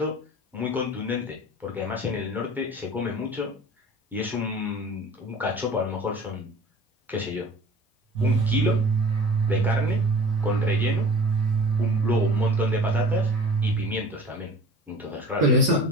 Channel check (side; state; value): both; normal; correlation 0.43